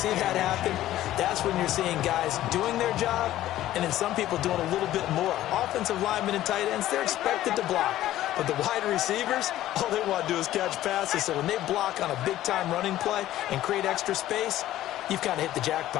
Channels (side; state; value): right; quieter; 14.0 dB